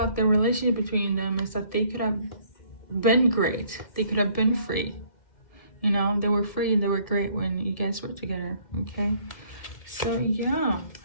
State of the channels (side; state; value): right; late; 2.1 ms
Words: the relationship between them is that they could have been great. They could have been free. You know, they were free and they were great when you guys were together, okay? So yeah,